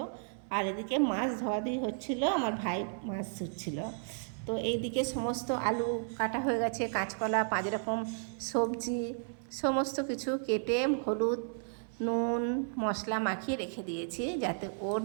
আর এদিকে মাছ ধোয়াধুয়ি হচ্ছিল, আমার ভাই মাছ ধুচ্ছিল। তো এইদিকে সমস্ত আলু কাটা হয়ে গেছে, কাঁচকলা, 5 রকম সবজি সমস্ত কিছু কেটে হলুদ নুন মশলা মাখিয়ে রেখে দিয়েছি যাতে ওর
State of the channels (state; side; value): silent; left; 56 dB below the other